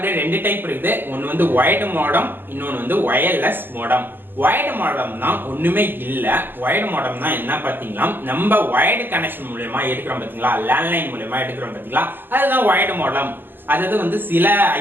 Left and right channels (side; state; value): left; late; 0.093 ms